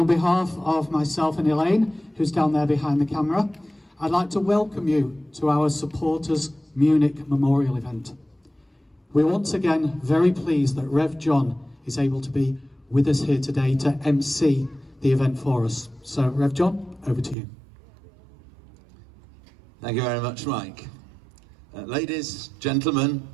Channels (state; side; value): drops out; left; at 17.4 s